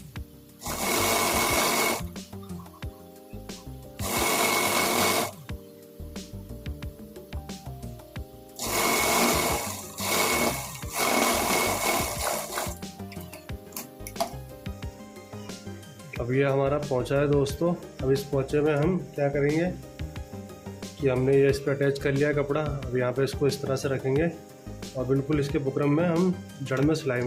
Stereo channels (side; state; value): both; identical; correlation 1.00